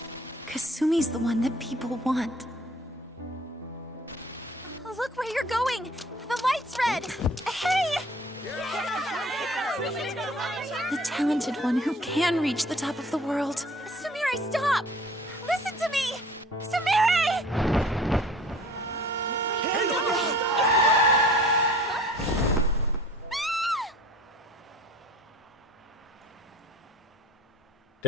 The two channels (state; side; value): normal; both; correlation 0.48